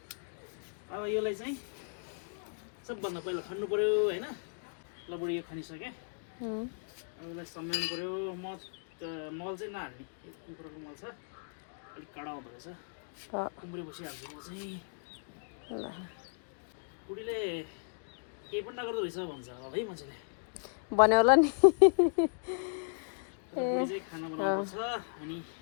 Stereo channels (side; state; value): right; silent; digital silence